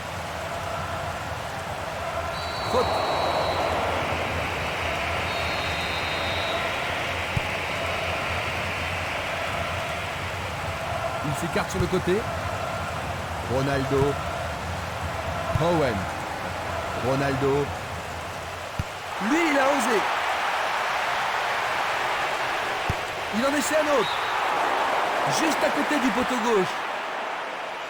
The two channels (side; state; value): both; identical; correlation 1.00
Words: Faute. Il s'écarte sur le côté. Ronaldo. Owen. Ronaldo. Lui, il a osé. Il en essaie un autre. Juste à côté du poteau gauche.